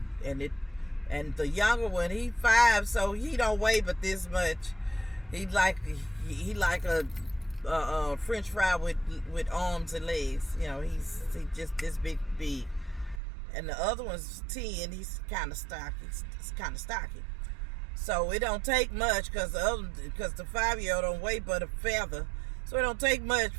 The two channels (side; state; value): left; drops out; at 13.2 s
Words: and the younger one, he 5, so he don't weigh but this much. He like a French fry with arms and legs. He's just this big. And the other one's 10. He's kind of stocky. So it don't take much because the 5-year-old don't weigh but a feather. So it don't take much.